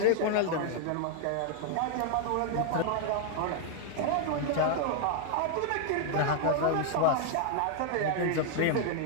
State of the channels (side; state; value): both; different; correlation 0.00